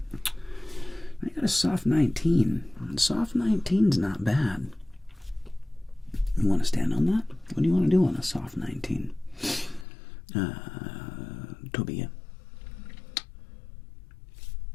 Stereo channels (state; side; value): drops out; right; at 9.9 s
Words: got a soft 19. Soft 19's not bad. You want to stand on that? What do you want to do on a soft 19? Tobia.